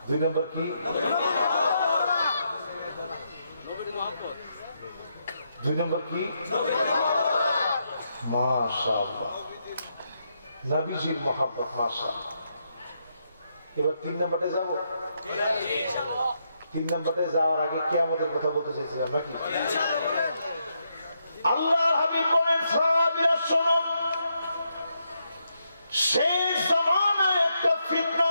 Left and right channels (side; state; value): both; inverted; correlation -0.80